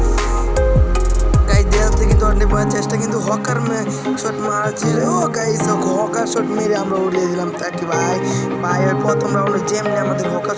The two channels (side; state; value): both; identical; correlation 1.00